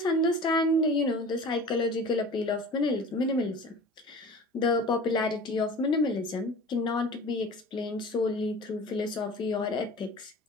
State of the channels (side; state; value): both; normal; correlation 0.40